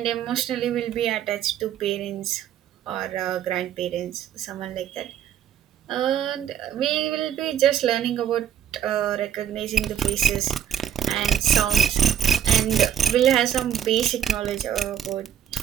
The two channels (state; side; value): quieter; left; 9.2 dB